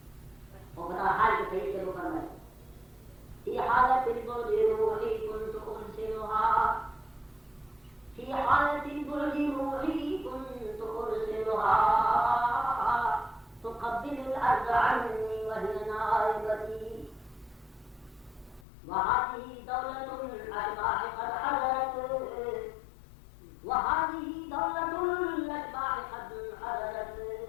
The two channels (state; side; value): drops out; right; at 18.7 s